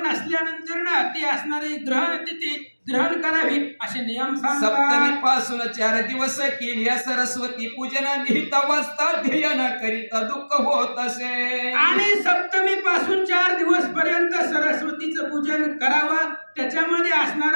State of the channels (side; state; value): both; inverted; correlation -1.00